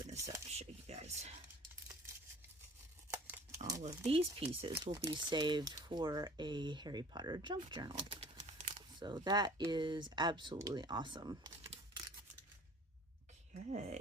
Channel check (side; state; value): both; normal; correlation 0.48